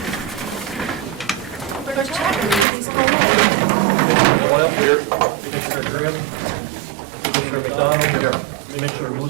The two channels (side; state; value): left; drops out; at 2.7 s